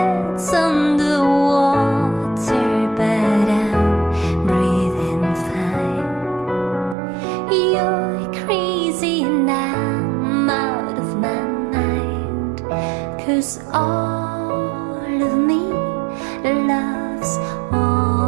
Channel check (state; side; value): drops out; left; at 7.0 s